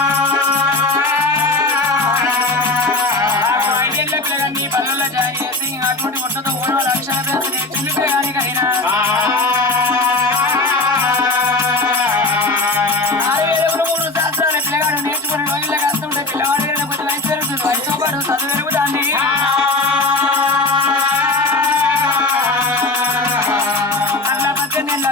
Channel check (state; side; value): quieter; right; 3.2 dB